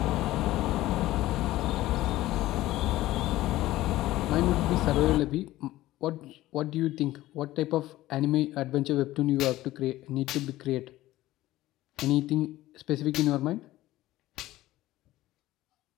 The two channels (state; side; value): quieter; right; 16.2 dB